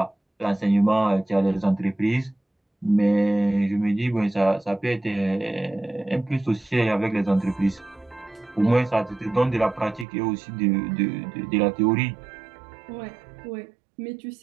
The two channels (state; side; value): drops out; left; at 10.1 s